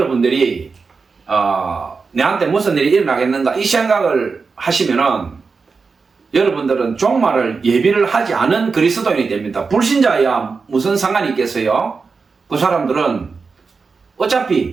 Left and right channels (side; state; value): left; quieter; 4.8 dB